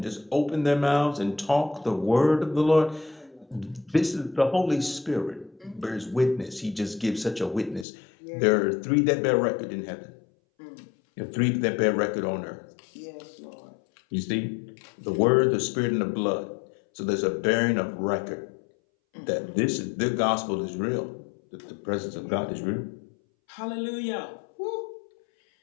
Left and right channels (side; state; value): right; drops out; at 7.9 s